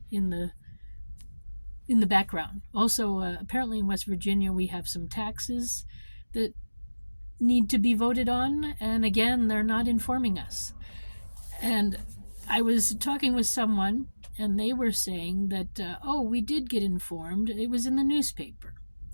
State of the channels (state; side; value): inverted; both; correlation -1.00